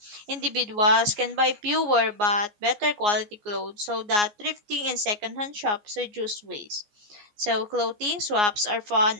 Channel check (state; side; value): late; left; 14 ms